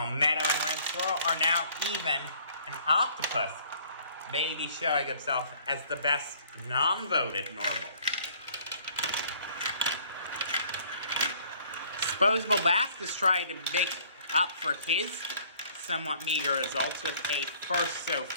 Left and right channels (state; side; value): inverted; both; correlation -0.58